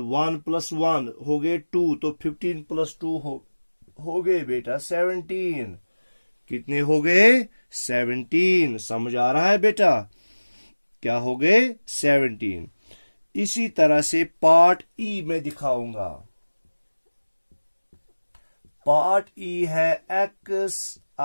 1 हो गए 2, तो 15 + 2 हो गए बेटा 17। कितने हो गए? 17। समझ आ रहा है बेटा? क्या हो गए? 17। इसी तरह से पार्ट ई में दिखाऊंगा। पार्ट ई है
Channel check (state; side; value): inverted; both; correlation -1.00